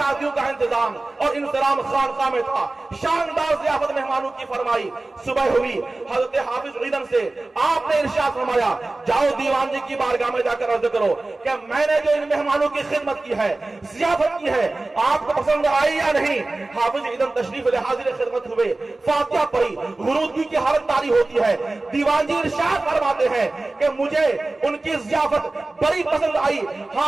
का इंतजाम और इंतजाम खानकाह में था। शानदार ज़ियाफत मेहमानों की फरमाई। सुबह हुई, हजरत हाफिज ईदन से आपने इरशाद फरमाया, जाओ दीवान जी की बारगाह में जाकर अर्ज करो कि मैंने जो इन मेहमानों की खिदमत की है, ज़ियाफत की है, आपको पसंद आई या नहीं। हाफिज ईदन तशरीफ ले हाजिर खिदमत हुए, फातिहा पढ़ी, गुरूदगी की हालत तारी होती है। दीवान जी इरशाद फरमाते हैं कि मुझे उनकी ज़ियाफत बड़ी पसंद आई। हाँ,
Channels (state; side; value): quieter; left; 3.0 dB